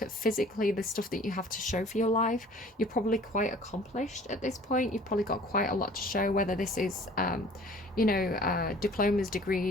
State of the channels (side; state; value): both; normal; correlation 0.49